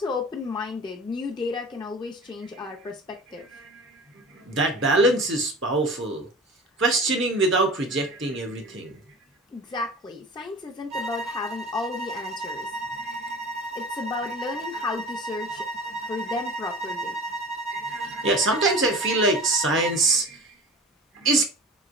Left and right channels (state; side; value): normal; both; correlation 0.36